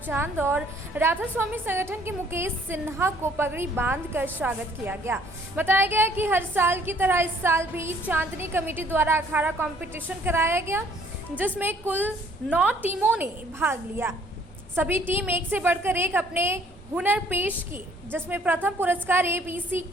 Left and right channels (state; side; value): normal; both; correlation 0.60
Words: और राधा स्वामी संगठन के मुकेश सिन्हा को पगड़ी बांधकर स्वागत किया गया। बताया गया कि हर साल की तरह इस साल भी चांदनी कमेटी द्वारा अखाड़ा कंपटीशन कराया गया, जिसमें कुल 9 टीमों ने भाग लिया। सभी टीम एक से बढ़कर एक अपने हुनर पेश किए, जिसमें प्रथम पुरस्कार एबीसी